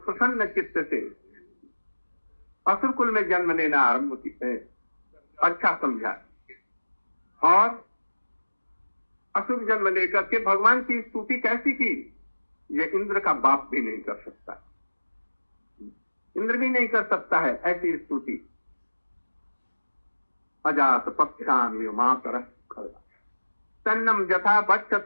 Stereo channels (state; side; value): inverted; both; correlation -1.00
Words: प्रसन्न चित्त से असुर कुल में जन्म लेना आरंभ है. अच्छा समझा. और असुर जन्म लेकर के भगवान की स्तुति कैसी की, ये इंद्र का बाप भी नहीं कर सकता, इंद्र भी नहीं कर सकता है ऐसी स्तुति. अजात पक्षान मातर. तन्नम यथा